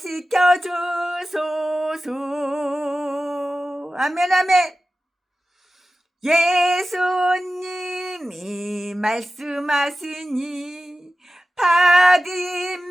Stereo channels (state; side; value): normal; both; correlation 0.94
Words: 주소서. 아멘 아멘. 예수님이 말씀하시니